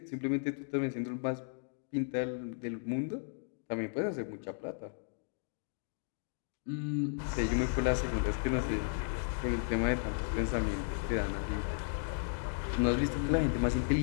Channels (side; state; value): right; silent; digital silence